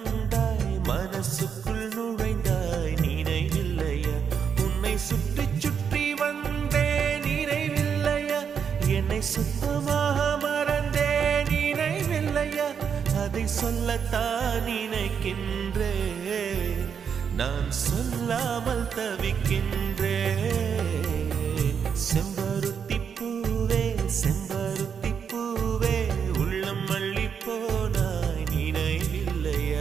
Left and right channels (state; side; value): quieter; left; 7.1 dB